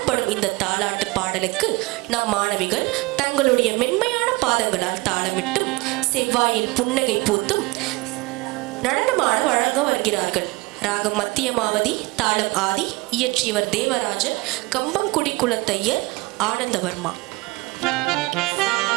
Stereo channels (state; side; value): quieter; left; 24.1 dB